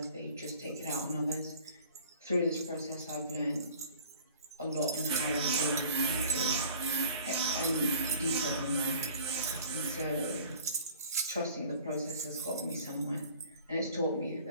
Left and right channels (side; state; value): both; inverted; correlation -0.48